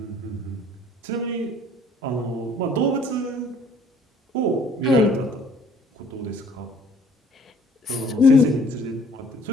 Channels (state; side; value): normal; both; correlation 0.56